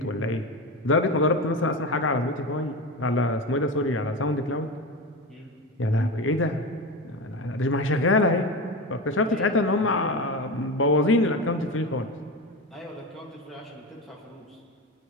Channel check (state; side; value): normal; both; correlation 0.22